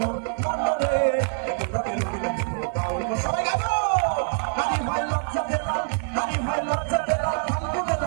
একটু রঙে রঙিন বাউল সবাই গাবো নারী ভাই লজ্জা পেলাম নারী ভাই লজ্জা পেলাম ফাল্গুনে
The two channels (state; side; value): silent; left; 62 dB below the other